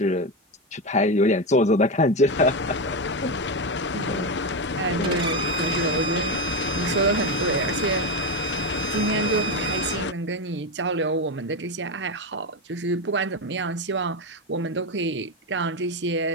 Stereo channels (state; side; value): normal; both; correlation 0.12